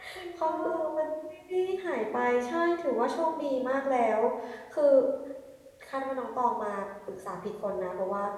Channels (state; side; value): identical; both; correlation 1.00